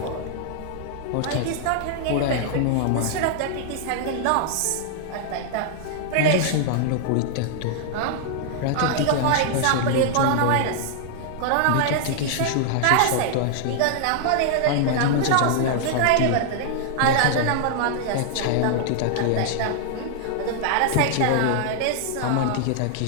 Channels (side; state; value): both; different; correlation -0.01